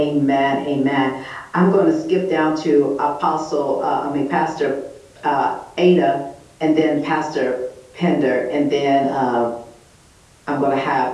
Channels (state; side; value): identical; both; correlation 1.00